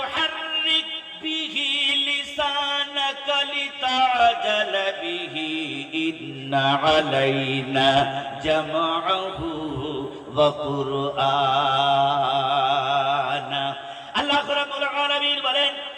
বিহি লিসানাকা লিতাজালা বিহি ইন্না আলাইনা জামআহু ওয়া কুরআনা। আল্লাহ রাব্বুল আলামিন বলেন,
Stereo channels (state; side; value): identical; both; correlation 1.00